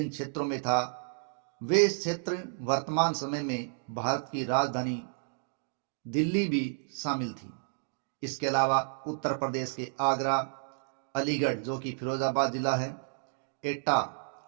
क्षेत्रों में था, वे क्षेत्र वर्तमान समय में भारत की राजधानी दिल्ली भी शामिल थी। इसके अलावा उत्तर प्रदेश के आगरा, अलीगढ़ जो कि फिरोजाबाद जिला है, एटा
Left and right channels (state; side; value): silent; left; digital silence